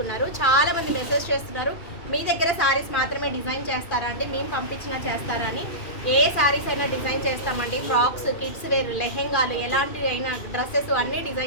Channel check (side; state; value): right; late; 2.4 ms